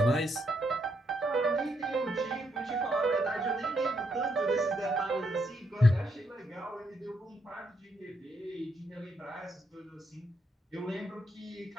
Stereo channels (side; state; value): both; normal; correlation 0.77